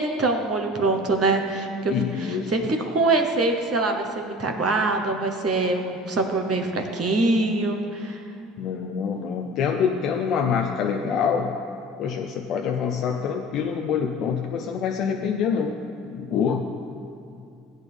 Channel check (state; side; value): normal; both; correlation 0.40